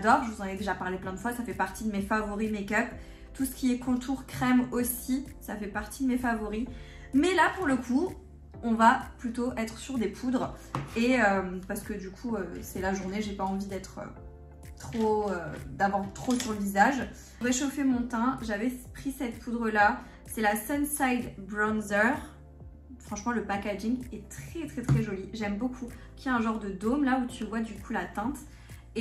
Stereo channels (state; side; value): identical; both; correlation 1.00